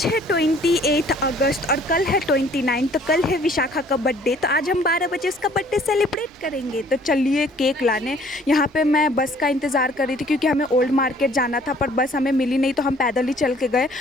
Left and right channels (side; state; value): both; normal; correlation 0.57